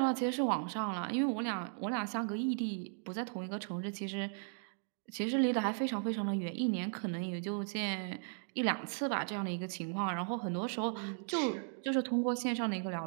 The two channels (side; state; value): left; silent; 53 dB below the other